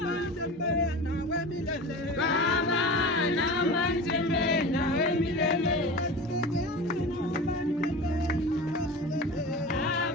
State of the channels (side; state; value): both; normal; correlation 0.32